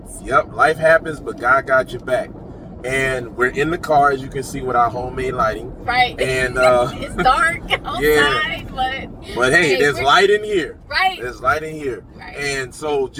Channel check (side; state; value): both; identical; correlation 1.00